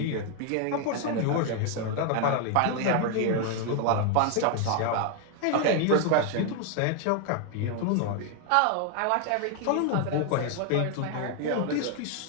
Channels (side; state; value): both; different; correlation 0.00